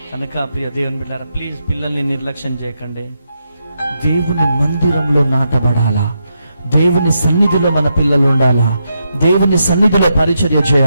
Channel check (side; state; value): both; inverted; correlation -0.83